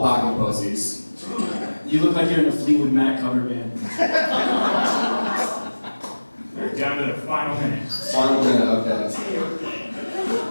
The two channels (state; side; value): inverted; both; correlation -1.00